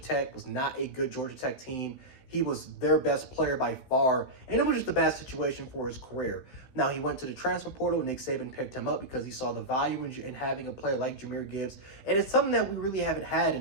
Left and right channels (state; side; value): late; right; 15 ms